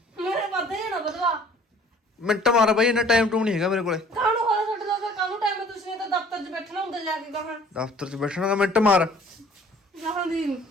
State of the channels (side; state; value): both; normal; correlation 0.54